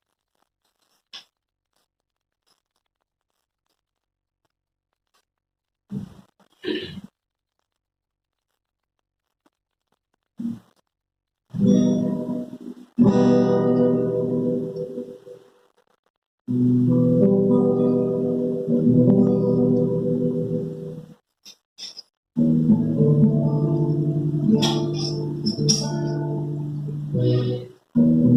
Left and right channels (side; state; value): both; identical; correlation 1.00